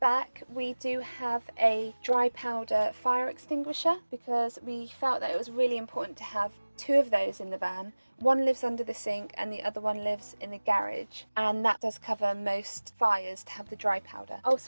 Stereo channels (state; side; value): inverted; both; correlation -1.00